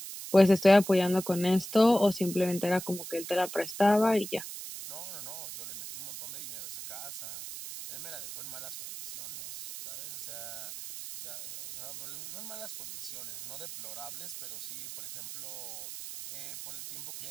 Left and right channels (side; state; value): right; noise; hiss, 11 dB below the sound